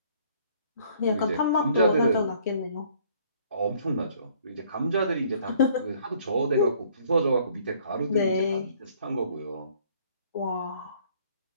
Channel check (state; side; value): inverted; both; correlation -0.60